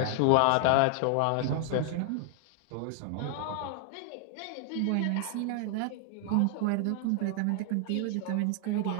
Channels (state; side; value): different; both; correlation 0.00